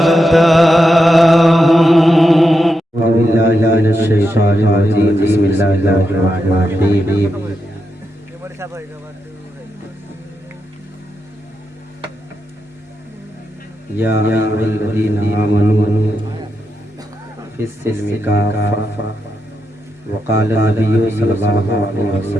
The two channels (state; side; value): normal; both; correlation 0.86